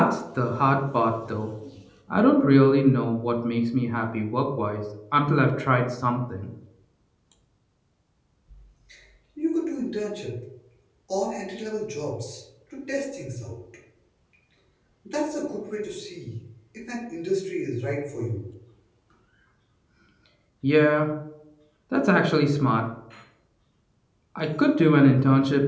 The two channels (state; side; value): identical; both; correlation 1.00